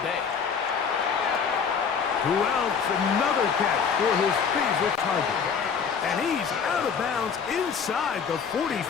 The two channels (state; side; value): quieter; right; 6.4 dB